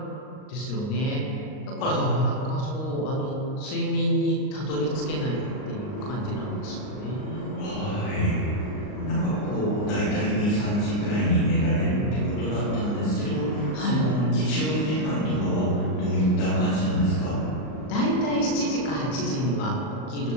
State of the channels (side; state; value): right; late; 39 ms